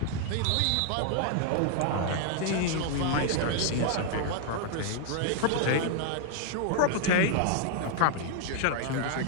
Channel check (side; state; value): both; different; correlation 0.00